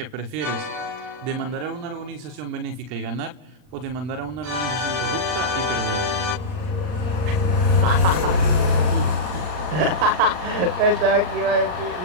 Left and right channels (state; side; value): late; left; 39 ms